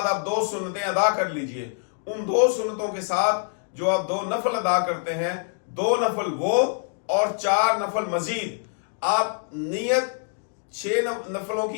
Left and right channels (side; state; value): right; silent; digital silence